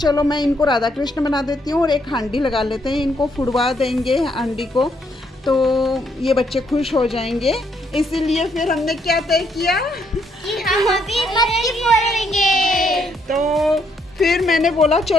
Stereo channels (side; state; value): both; normal; correlation 0.73